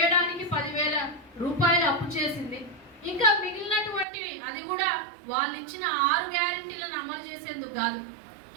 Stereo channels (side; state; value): left; drops out; at 4.0 s